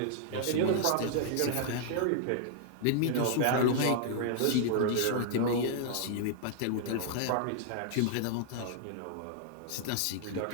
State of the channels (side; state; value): both; different; correlation -0.01